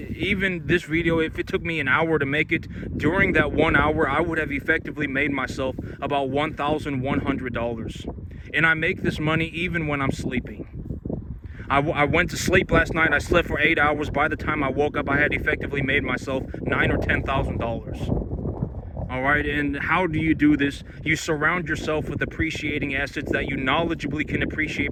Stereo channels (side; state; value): both; identical; correlation 1.00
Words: this video, if it took me an hour to make it, during that 1 hour, I would have effectively made myself about $1,100. And I make this money even when I'm sleeping. I went to sleep last night. I slept for 8 hours. By the time I woke up, I had effectively made myself $9,000 or $10,000. All right, and how do you do this? You surround yourself with appreciating assets that you knowledgeably can